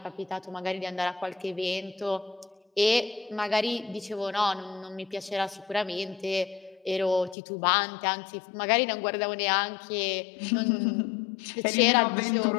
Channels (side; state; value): right; drops out; at 7.4 s